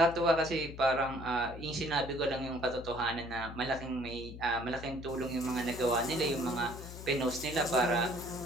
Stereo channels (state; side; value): noise; left; hum, 12 dB below the sound